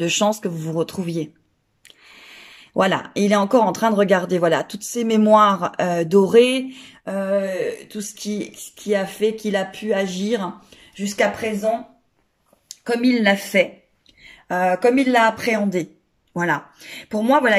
chances que vous vous retrouviez. Voilà, il est encore en train de regarder, voilà, toutes ces mémoires dorées, tout ce qui a fait qu'il a pu agir jusqu'à présent, comme il l'a fait, comme il l'a appréhendé. Voilà. Pour moi, voilà,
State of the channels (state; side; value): identical; both; correlation 1.00